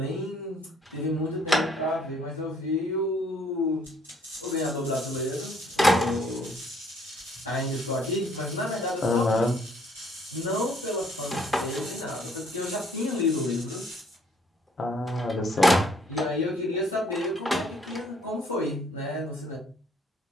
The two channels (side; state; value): both; normal; correlation 0.63